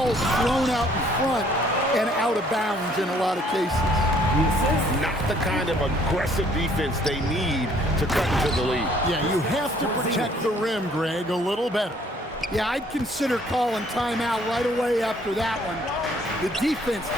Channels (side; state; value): both; normal; correlation 0.61